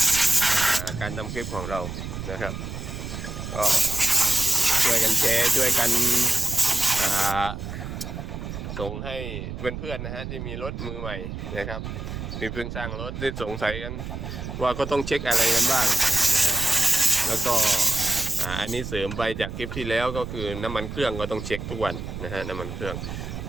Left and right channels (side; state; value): right; noise; rumble, 7 dB below the sound